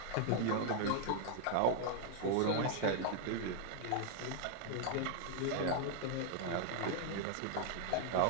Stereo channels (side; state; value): both; different; correlation -0.01